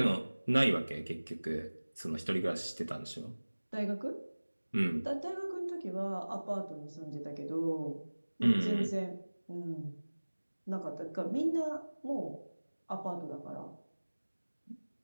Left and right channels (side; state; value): both; inverted; correlation -1.00